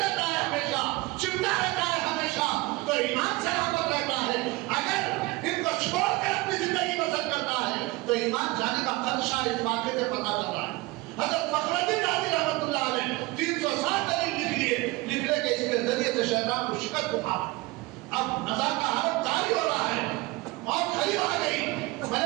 ہے، ہمیشہ چمٹا رہتا ہے ہمیشہ، تو ایمان سلامت رہتا ہے. اگر ان کو چھوڑ کر اپنی زندگی بسر کرتا ہے تو ایمان جانے کا خدشہ اس واقعے سے پتہ چل رہا ہے. حضرت فخر الدین رازی رحمۃ اللہ علیہ 360 دلیل لکھ لیے، لکھنے کے اس کے ذریعے سے شیطان کو شکست اٹھا. اب نزا کا حالت جاری ہو رہا ہے، موت قریب آ گئی،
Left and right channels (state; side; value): quieter; left; 21.5 dB